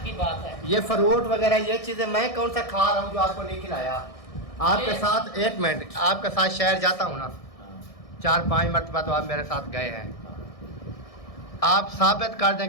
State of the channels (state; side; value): late; right; 1.6 ms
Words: की बात है। ये फ्रूट वगैरह ये चीज़ें मैं कौन सा खा रहा हूँ जो आपको नहीं खिलाया? आपके ये- साथ, एक मिनट, आपके साथ शहर जाता हूँ ना, हाँ, 4-5 मरतबा तो आप मेरे साथ गए हैं। हाँ, आप साबित कर